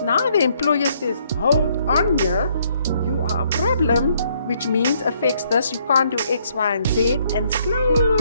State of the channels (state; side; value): inverted; both; correlation -0.69